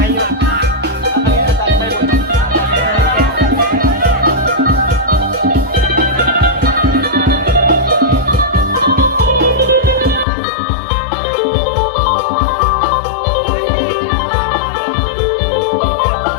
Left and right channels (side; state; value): right; drops out; at 10.2 s